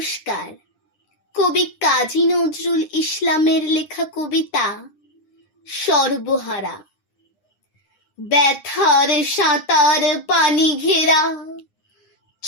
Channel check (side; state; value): right; late; 9.8 ms